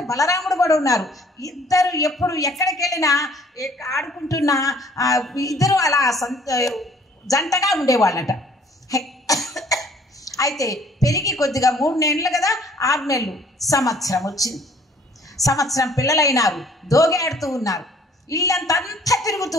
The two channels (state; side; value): normal; both; correlation 0.57